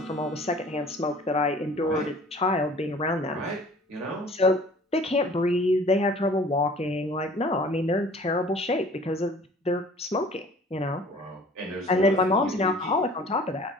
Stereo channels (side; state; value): both; normal; correlation 0.49